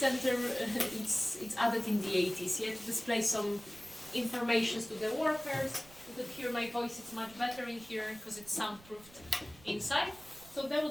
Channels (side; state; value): right; noise; rumble, 22 dB below the sound